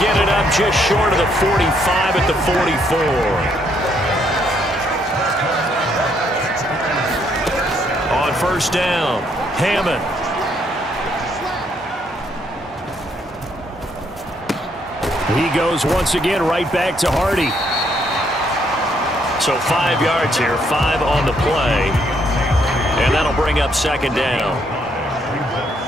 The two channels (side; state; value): both; normal; correlation 0.71